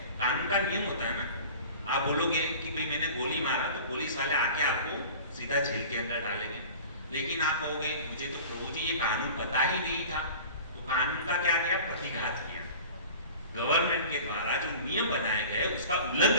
कानून का नियम होता है ना, आप बोलोगे कि भाई मैंने गोली मारा, तो पुलिस वाले आके आपको सीधा जेल के अंदर डालेंगे। लेकिन आप कहोगे मुझे तो प्रभु जी ये कानून पता ही नहीं था, तो कानून का क्या किया, प्रतिघात किया। गवर्नमेंट के द्वारा जो नियम बनाए गए उसका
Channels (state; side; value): inverted; both; correlation -0.40